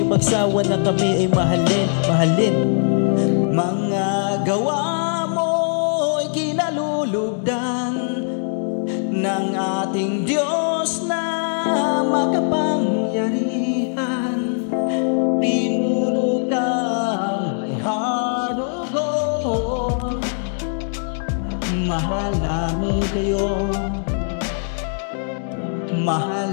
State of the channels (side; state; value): right; silent; digital silence